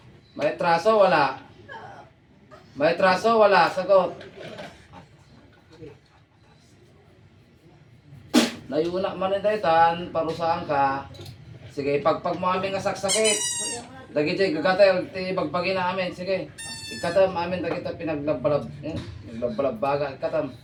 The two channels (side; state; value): both; identical; correlation 1.00